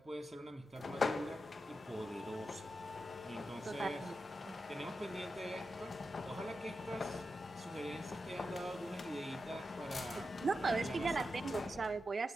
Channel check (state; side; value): normal; both; correlation 0.89